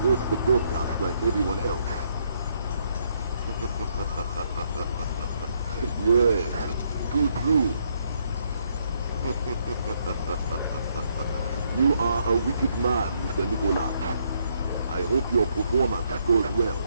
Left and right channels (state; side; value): inverted; both; correlation -0.72